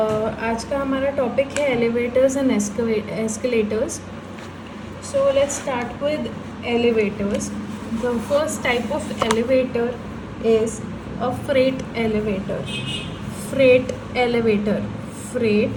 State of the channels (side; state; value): both; identical; correlation 1.00